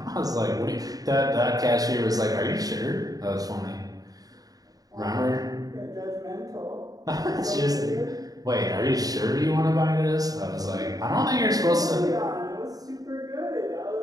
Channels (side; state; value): left; late; 0.18 ms